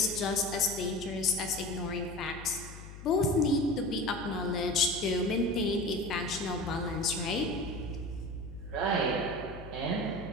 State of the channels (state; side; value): noise; left; hum, 14 dB below the sound